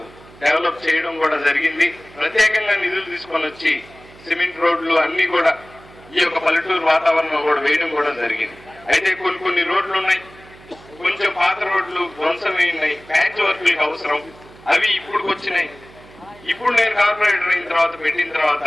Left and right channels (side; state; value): right; noise; hum, 22 dB below the sound